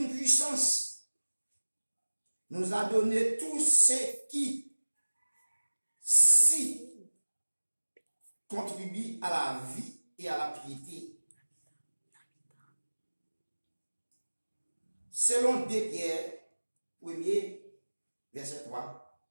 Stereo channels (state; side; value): inverted; both; correlation -1.00